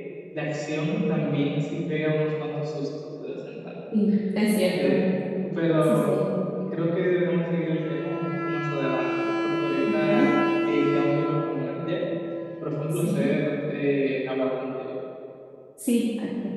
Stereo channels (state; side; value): identical; both; correlation 1.00